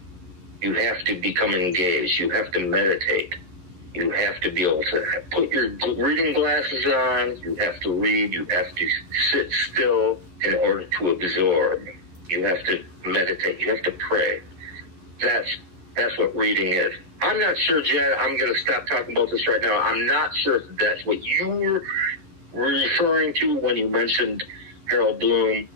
You have to become engaged. You have to meditate. You have to be able to put your reading glasses on. You have to read. You have to sit still in order to absorb. You have to meditate. You have to pray. That's what reading is. I'm not sure, Jed. I'm going to stop talking about this right now. I'm not sure if that's what you were referring to when you mentioned Harold Bloom.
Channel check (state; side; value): late; left; 11 ms